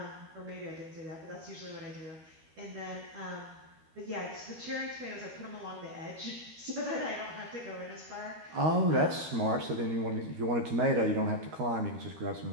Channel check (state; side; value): late; left; 13 ms